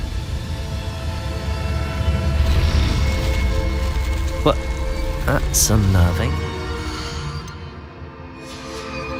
What? That's unnerving.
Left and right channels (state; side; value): identical; both; correlation 1.00